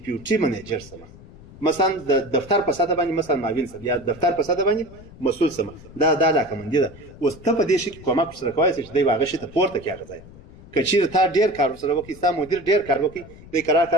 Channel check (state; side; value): noise; left; rumble, 19 dB below the sound